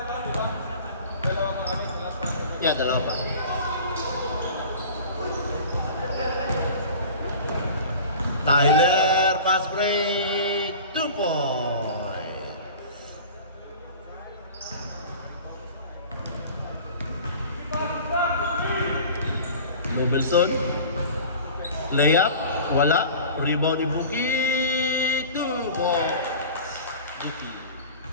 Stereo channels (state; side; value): inverted; both; correlation -0.40